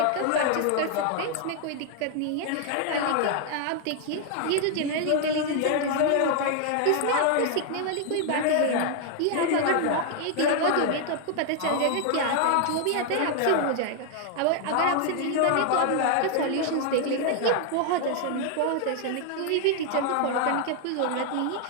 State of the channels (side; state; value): both; different; correlation 0.00